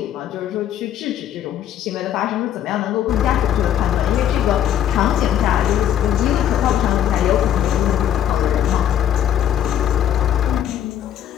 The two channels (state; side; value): quieter; right; 10.5 dB